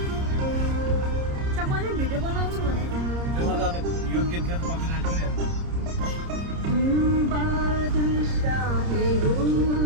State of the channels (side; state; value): left; late; 30 ms